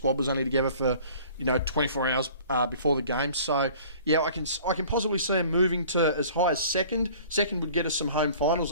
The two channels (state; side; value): inverted; both; correlation -0.48